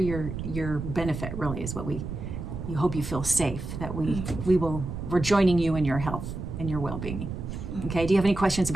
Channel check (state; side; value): noise; right; rumble, 7 dB below the sound